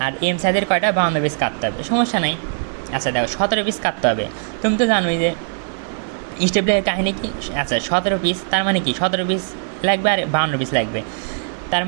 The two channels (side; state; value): left; silent; digital silence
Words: আর এম সাইজের কয়টা 52 পিস কাটতে হবে, সমস্যা নেই। আচ্ছা দেখো 17 পিস কাটতে হবে, তুমি তো জানোই যে স্টেপলারের কাহিনী কি। আচ্ছা 17 পিস তার মানে কি 17 পিস লাগবে আর 52 পিস লাগবে, তার